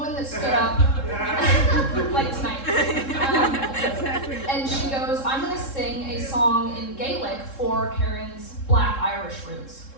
that stood up, like tonight, and she goes, I'm going to sing a song in Gaelic for Karen's Black Irish roots.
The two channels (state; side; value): late; right; 3.7 ms